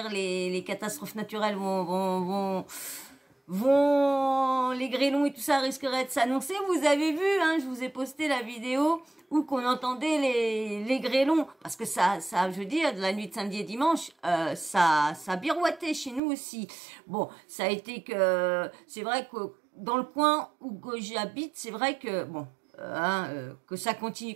les catastrophes naturelles les grêlons et tout ça risqueraient de s'annoncer. Vous avez vu, hein, je vous ai posté la vidéo où qu'on entendait les grêlons, parce que ça, je veux dire, de la nuit de samedi et dimanche, ça birouettait chez nous aussi. Bon, ça a été que, c'est vrai que dans le coin où j'habite, c'est vrai que, bon, que ça continue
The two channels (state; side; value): drops out; left; at 16.2 s